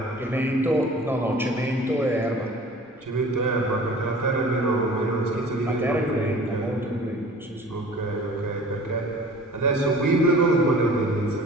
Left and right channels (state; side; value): normal; both; correlation 0.45